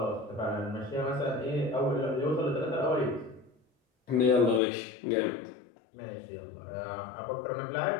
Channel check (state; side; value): drops out; right; at 4.6 s